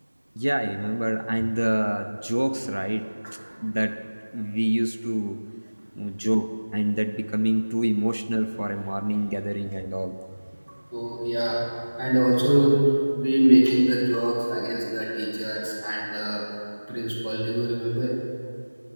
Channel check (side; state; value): both; inverted; correlation -1.00